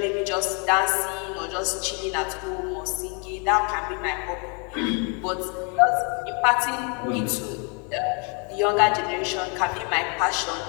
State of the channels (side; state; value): right; quieter; 35.7 dB